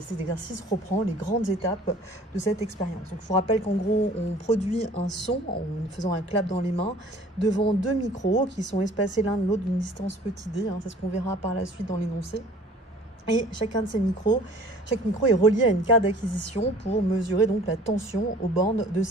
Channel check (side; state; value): both; normal; correlation 0.50